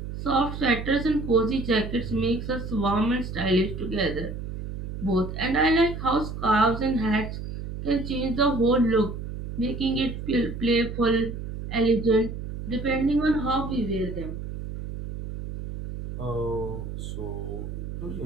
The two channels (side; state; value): right; noise; hum, 7 dB below the sound